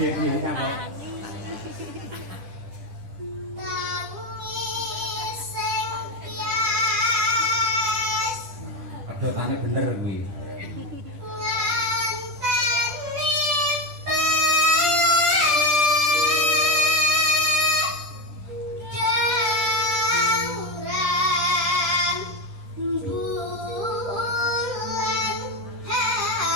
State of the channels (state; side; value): late; left; 10 ms